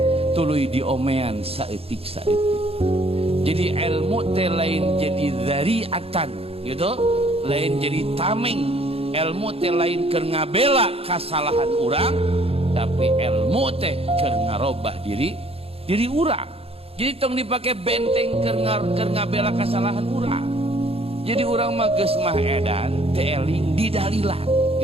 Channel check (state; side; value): late; left; 0.28 ms